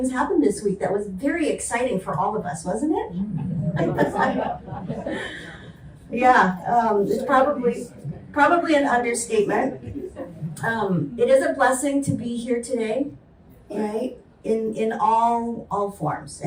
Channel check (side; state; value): both; identical; correlation 1.00